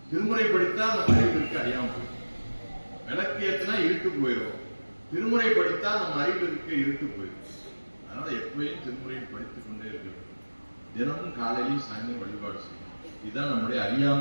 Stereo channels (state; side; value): inverted; both; correlation -1.00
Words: திருமுறை படித்தா நம்ம அறிவிற்கு அறியாம போயிடும். விளக்கு ஏற்றினா இருட்டு போயிடும். திருமுறை படித்தா நம்ம அறிவிற்கு இருட்டு போயிடும். அதனால எப்பயும் திருமுறையை படித்துக் கொண்டே இருக்கணும். தினமும் காலையிலும் சாயந்தரம் வழிபாடு செய்யணும். இதுதான் நம்முடைய